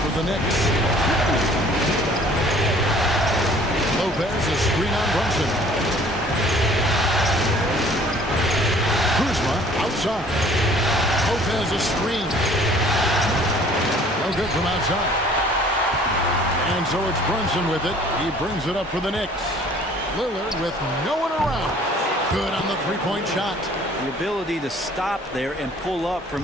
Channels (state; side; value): normal; both; correlation 0.54